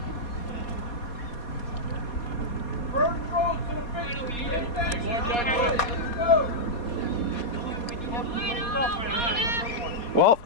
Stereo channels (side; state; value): right; late; 4.2 ms